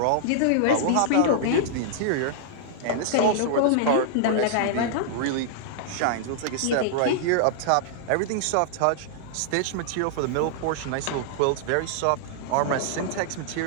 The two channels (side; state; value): both; different; correlation -0.01